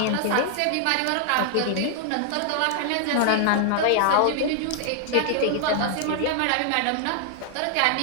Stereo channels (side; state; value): both; different; correlation 0.00